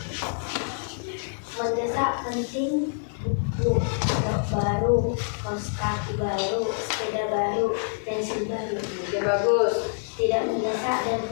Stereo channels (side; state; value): right; silent; digital silence